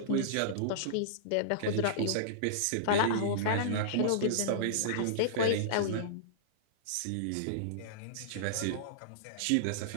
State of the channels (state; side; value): different; both; correlation -0.03